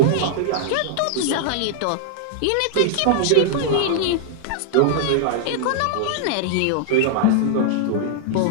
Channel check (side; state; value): both; different; correlation -0.01